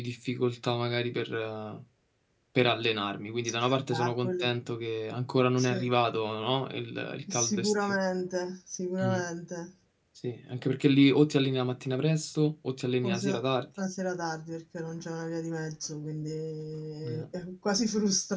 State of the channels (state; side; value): identical; both; correlation 1.00